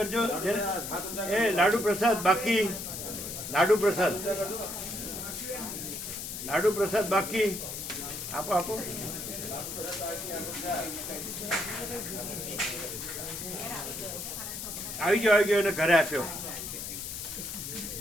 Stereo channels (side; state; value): left; noise; hiss, 6 dB below the sound